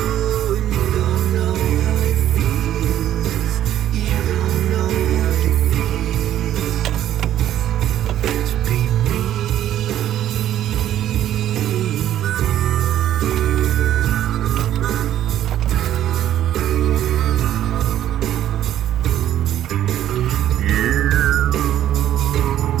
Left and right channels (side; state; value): left; quieter; 11.7 dB